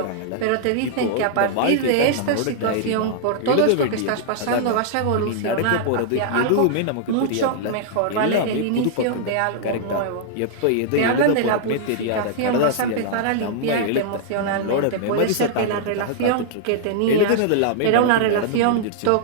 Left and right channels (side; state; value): both; different; correlation -0.01